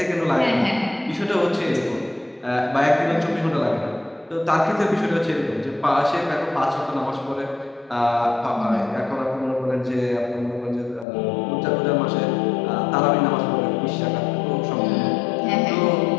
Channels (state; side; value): drops out; right; at 11.1 s